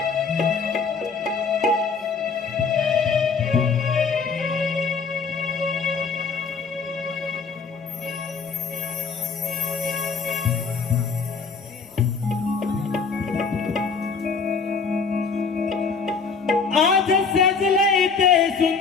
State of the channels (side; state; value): right; quieter; 5.1 dB